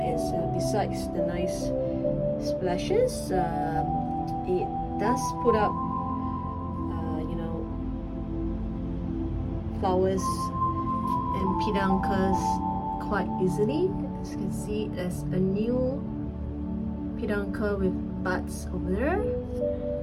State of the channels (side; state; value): both; identical; correlation 1.00